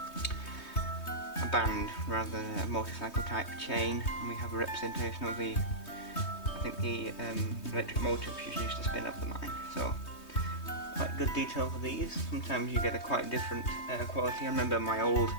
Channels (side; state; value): right; late; 3.2 ms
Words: band rather than a motorcycle type chain. And we have a representation of the, I think the electric motor which is used to spin up the mine. So quite good detail for these. Sometimes you get a quite different quality. I remember my old,